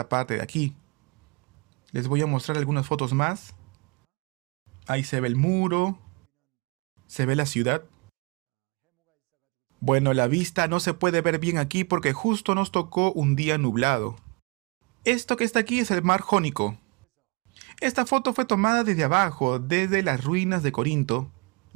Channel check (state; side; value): quieter; left; 30.8 dB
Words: parte de aquí. Les voy a mostrar algunas fotos más. Ahí se ve el muro, se ve la ciudad. Bueno, la vista no se puede ver bien aquí porque justo nos tocó un día nublado. Esto que está aquí es el mar Jónico. Esta foto fue tomada desde abajo, desde las ruinas de Corinto,